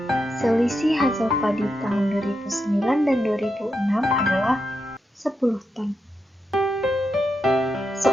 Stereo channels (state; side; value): normal; both; correlation 0.85